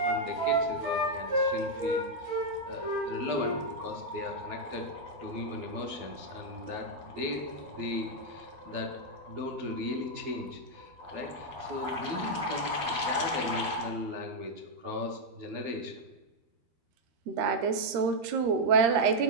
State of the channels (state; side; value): late; left; 13 ms